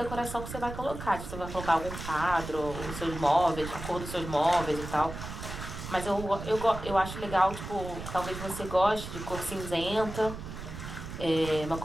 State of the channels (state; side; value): noise; right; rumble, 9 dB below the sound